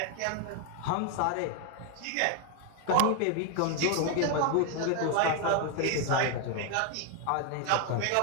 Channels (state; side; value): different; both; correlation 0.01